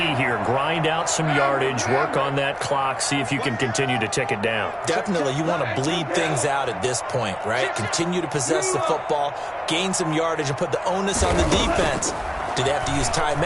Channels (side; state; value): both; identical; correlation 1.00